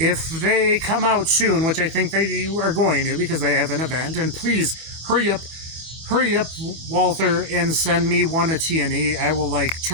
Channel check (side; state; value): left; late; 24 ms